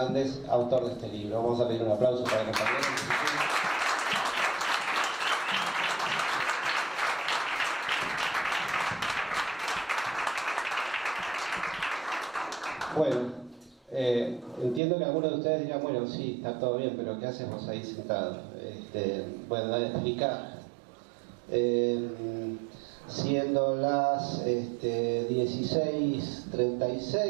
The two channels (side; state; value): left; drops out; at 14.8 s